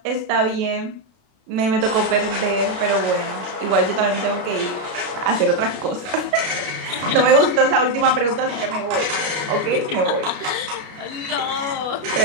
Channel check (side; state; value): left; late; 33 ms